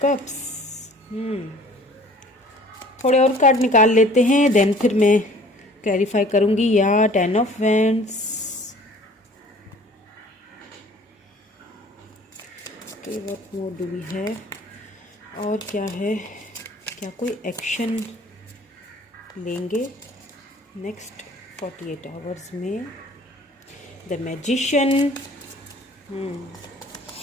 cups. थोड़े और कार्ड निकाल लेते हैं, देन फिर मैं क्लैरिफाई करूँगी। या 10 of wands. Okay, what more do we have? और क्या है? क्या कोई एक्शन लेंगे नेक्स्ट 48 आवर्स में? The magician.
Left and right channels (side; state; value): both; normal; correlation 0.50